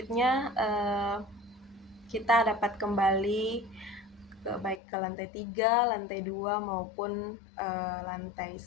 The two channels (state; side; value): drops out; right; at 4.8 s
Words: kita dapat kembali baik ke lantai 3, lantai 2 maupun lantai